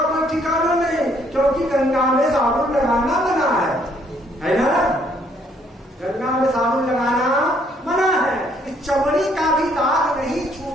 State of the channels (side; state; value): both; normal; correlation 0.66